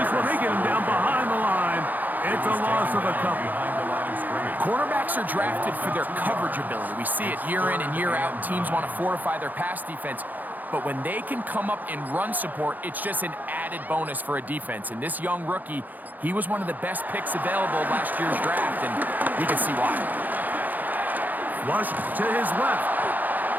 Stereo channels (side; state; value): left; late; 0.083 ms